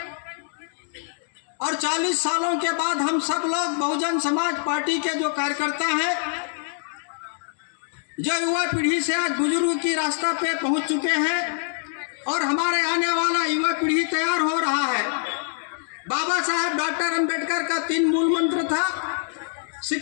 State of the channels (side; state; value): right; silent; digital silence